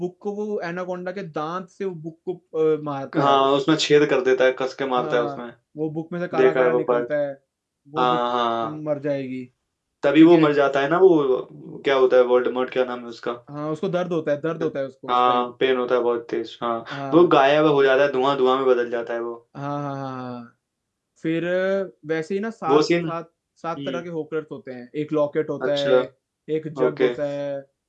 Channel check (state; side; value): identical; both; correlation 1.00